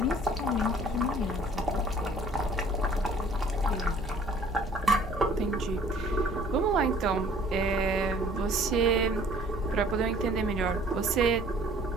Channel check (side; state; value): right; noise; rumble, 14 dB below the sound